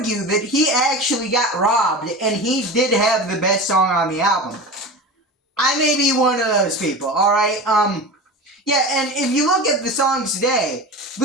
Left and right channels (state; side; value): normal; both; correlation 0.30